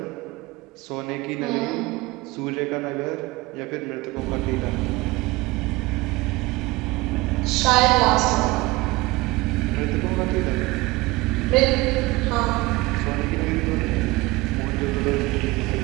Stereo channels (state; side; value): quieter; left; 21.6 dB